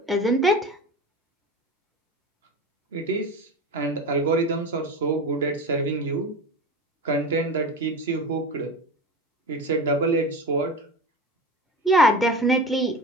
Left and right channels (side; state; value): both; normal; correlation 0.30